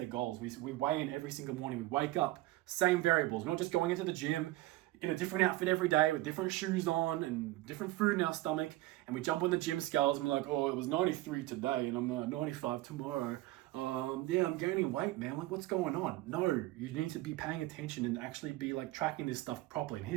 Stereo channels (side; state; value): left; quieter; 17.2 dB